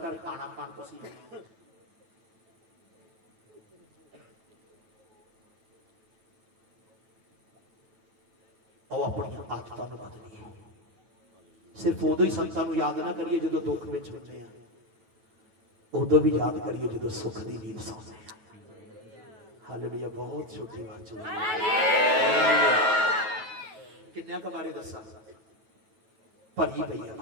ਖਾਣਾ ਖਾਣ ਤੁਸੀਂ ਆਓ। ਆਪਣੀਆਂ ਆਦਤਾਂ ਨੂੰ ਬਦਲੀਏ। ਸਿਰਫ ਉਦੋਂ ਹੀ ਸੰਤਾਂ ਨੂੰ ਯਾਦ ਨਾ ਕਰੀਏ ਜਦੋਂ ਦੁੱਖ ਵਿੱਚ ਹੁੰਦੇ ਆ, ਉਦੋਂ ਵੀ ਯਾਦ ਕਰੀਏ ਜਦੋਂ ਸੁੱਖ ਦੀ ਨੀਂਦ ਸੌਂਦੇ ਆ। ਹਾਲੇਲੂਇਆ। ਬਹੁਤ ਛੋਟੀ ਬਾਤ ਹੈ। ਕਿੰਨਿਆਂ ਕੁ ਬਾਰੇ ਦੱਸਾਂ? ਭਰੀ ਪਈ ਆ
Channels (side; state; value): left; late; 9.2 ms